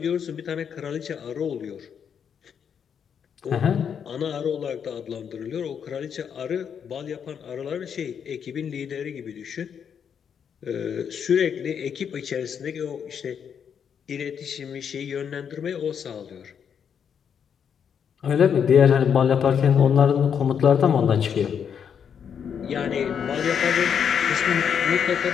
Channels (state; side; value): quieter; right; 7.6 dB